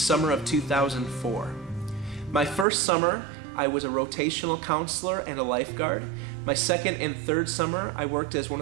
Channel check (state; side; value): drops out; left; at 2.7 s